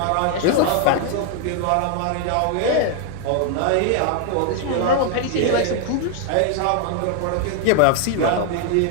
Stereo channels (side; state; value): both; different; correlation 0.00